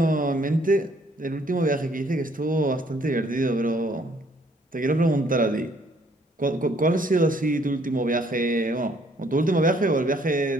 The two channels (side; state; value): both; normal; correlation 0.64